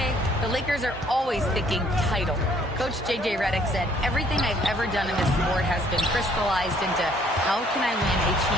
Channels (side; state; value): both; normal; correlation 0.62